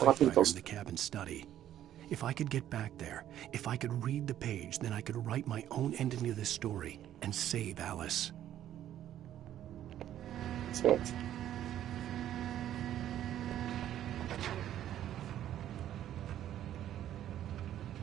in the cabin study. If I could get back there, if I could read the page, then I could write my own ending to this story and save Alice. Certo.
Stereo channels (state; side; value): quieter; left; 11.6 dB